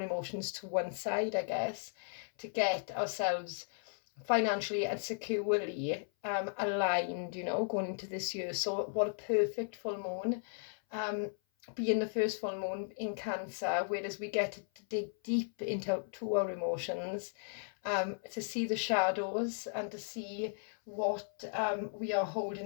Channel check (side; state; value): right; silent; 54 dB below the other